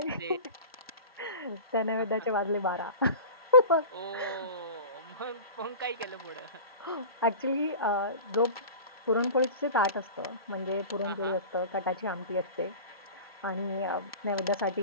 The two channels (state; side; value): inverted; both; correlation -0.35